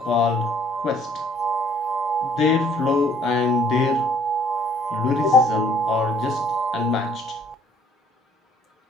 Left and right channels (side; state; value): both; normal; correlation 0.60